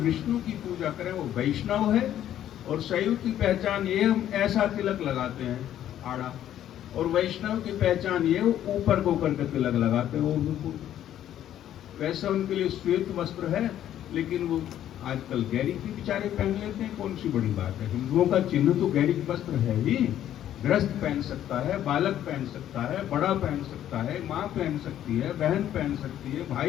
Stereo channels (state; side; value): quieter; right; 11.4 dB